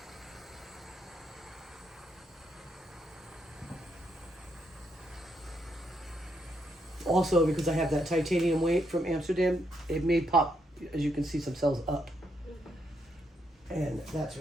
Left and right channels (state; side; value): normal; both; correlation 0.77